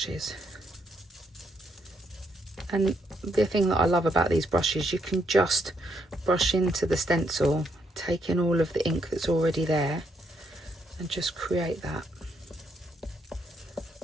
And the thing that I love about these brushes, you can just brush into the stencil, take in all of the ink that's already there and just create that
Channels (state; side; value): normal; both; correlation 0.76